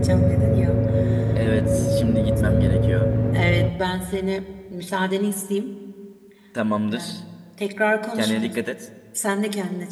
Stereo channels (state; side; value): identical; both; correlation 1.00